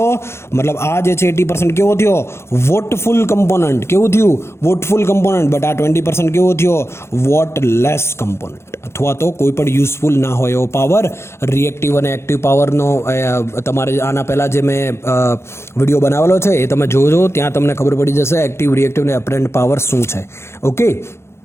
મતલબ આ જે છે 80% કેવો થયો? વોટફુલ કમ્પોનન્ટ. કેવું થયું? વોટફુલ કમ્પોનન્ટ. બટ આ 20% કેવો થયો? વોટલેસ કમ્પોનન્ટ, અથવા તો કોઈ પણ યુઝફુલ ના હોય એવો પાવર. રિએક્ટિવ અને એક્ટિવ પાવરનો તમારે આના પહેલાં જે મેં વિડીયો બનાવેલો છે એ તમે જોજો, ત્યાં તમને ખબર પડી જશે એક્ટિવ, રિએક્ટિવ અને એપરન્ટ પાવર શું છે. ઓકે,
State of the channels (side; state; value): right; late; 0.13 ms